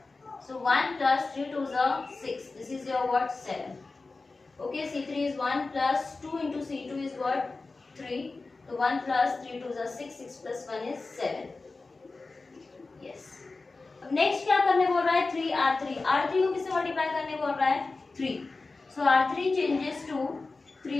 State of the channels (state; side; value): quieter; right; 3.7 dB